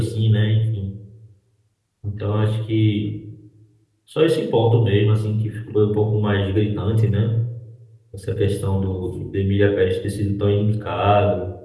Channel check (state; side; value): identical; both; correlation 1.00